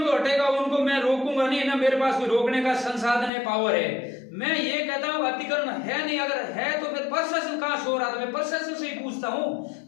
तो हटेगा, उनको मैं रोकूंगा नहीं, ना मेरे पास कोई रोकने का संसाधन है, पावर है। मैं ये कहता हूँ अतिक्रमण है नहीं, अगर है तो फिर प्रशासन कहाँ सो रहा था? मैं प्रशासन से ही पूछता हूँ,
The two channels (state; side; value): drops out; right; at 3.3 s